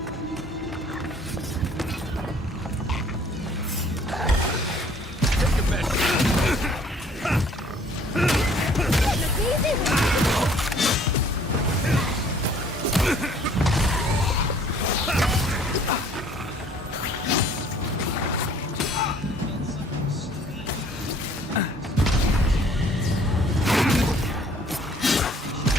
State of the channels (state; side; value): normal; both; correlation 0.57